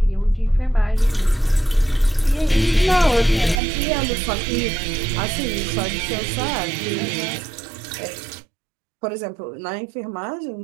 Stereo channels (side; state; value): left; drops out; at 3.6 s